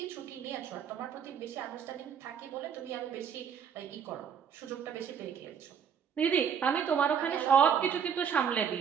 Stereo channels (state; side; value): quieter; left; 7.7 dB